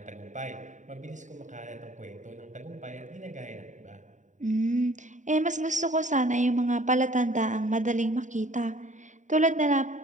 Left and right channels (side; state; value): left; late; 0.36 ms